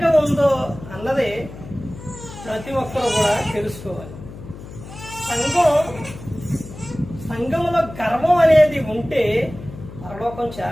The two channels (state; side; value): noise; left; hum, 14 dB below the sound